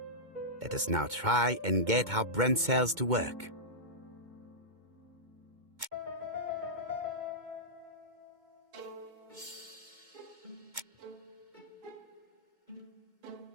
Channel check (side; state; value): left; late; 2.2 ms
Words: Let us now try and get our brain cells to work.